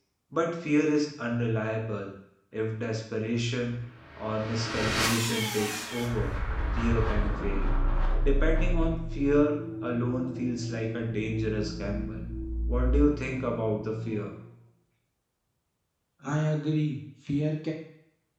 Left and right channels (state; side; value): identical; both; correlation 1.00